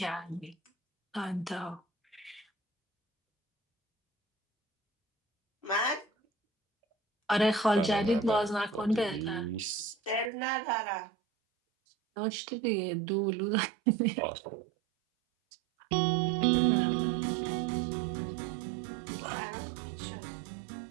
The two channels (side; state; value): left; drops out; at 10.3 s